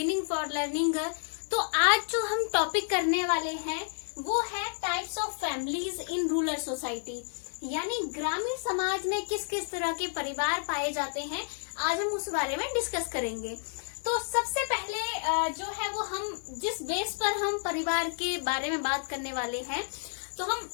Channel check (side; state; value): right; silent; 57 dB below the other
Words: for learning. तो आज जो हम टॉपिक करने वाले हैं वो है types of families in rural society, यानी ग्रामीण समाज में किस किस तरह के परिवार पाए जाते हैं। आज हम उस बारे में डिस्कस करेंगे। तो सबसे पहले जो है वो हम जिस बेस पर हम परिवार के बारे में बात करने वाले हैं, तो हम